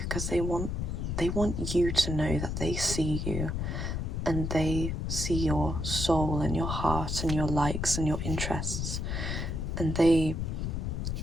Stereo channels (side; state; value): left; noise; rumble, 2 dB below the sound